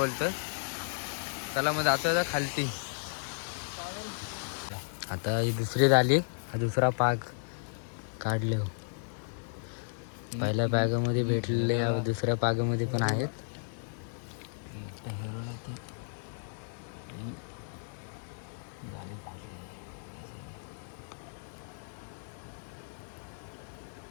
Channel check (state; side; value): silent; right; 55 dB below the other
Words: चला मग जातोय आता खालती. आता ही दुसरी झाली, हा दुसरा पाग काढले. पहिल्या पागामध्ये भेटलेले दुसऱ्या पागामध्ये पण आहेत.